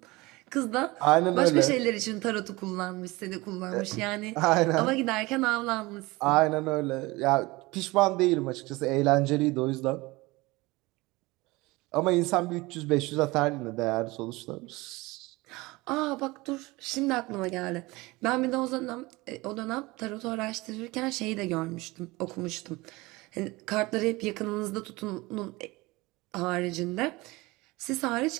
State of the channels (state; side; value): quieter; left; 22.0 dB